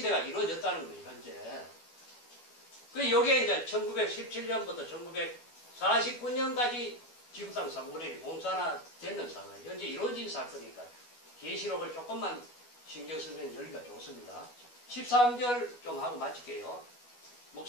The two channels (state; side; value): late; right; 12 ms